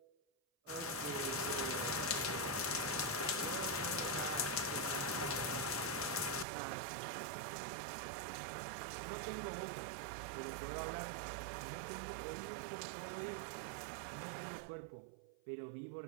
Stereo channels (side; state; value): left; drops out; at 6.5 s